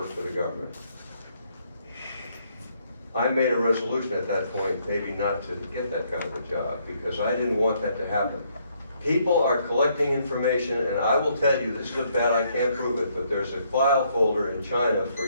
for the government. I made a resolution at that point, maybe not to get that kind of a job, because I didn't want that to happen. People are collecting information, and I will tell you, this is a bet, I can't prove it, but there's a file folder in China for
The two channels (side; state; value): both; inverted; correlation -0.71